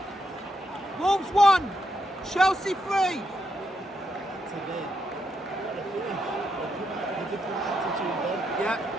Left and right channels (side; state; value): both; normal; correlation 0.80